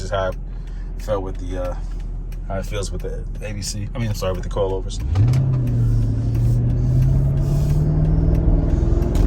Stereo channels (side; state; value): both; identical; correlation 1.00